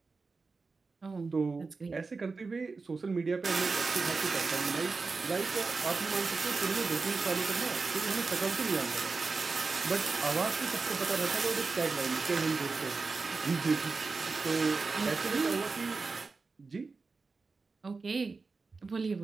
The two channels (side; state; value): left; quieter; 4.2 dB